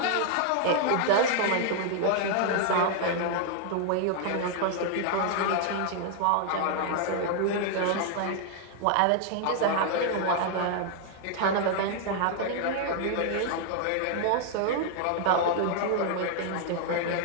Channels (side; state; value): both; different; correlation 0.00